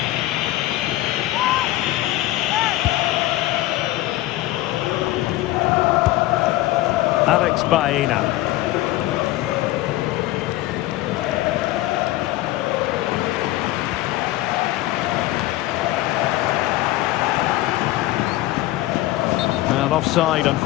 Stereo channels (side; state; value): right; quieter; 16.6 dB